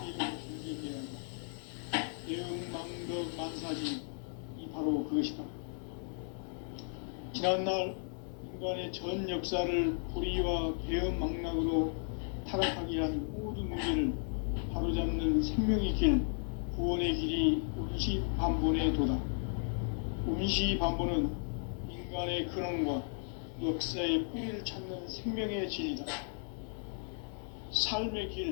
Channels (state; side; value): silent; right; 54 dB below the other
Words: 죄로 경계해야 한다. 대응망덕 만사지, 이 바로 그것이다. 지난날 인간의 전 역사를 불의와 배은망락으로 타락하게 한 모든 문제를 바로잡는 생명의 길, 구원의 길이 운시반본의 도다. 운시반본은 인간의 근원과 역사의 뿌리를 찾는 생명의 진리다. 삶의